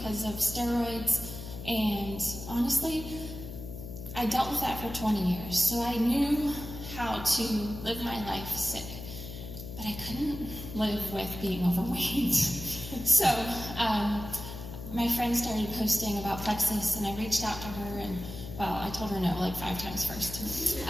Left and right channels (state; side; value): noise; left; hum, 10 dB below the sound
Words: of steroids, and honestly, I dealt with that for 20 years, so I knew how to live my life sick, but I couldn't live with being overweight. So my friend started posting about Plexus, and I reached out to her, and well, I told her no like 5 times first.